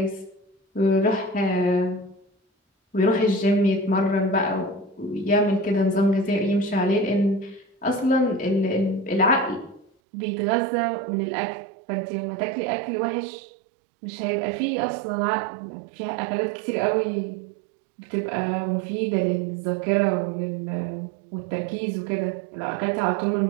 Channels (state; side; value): drops out; left; at 9.9 s